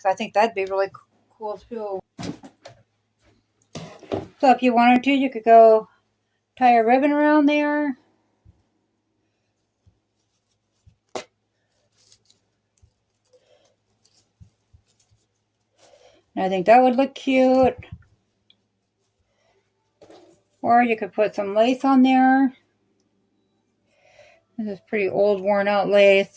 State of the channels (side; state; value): both; identical; correlation 1.00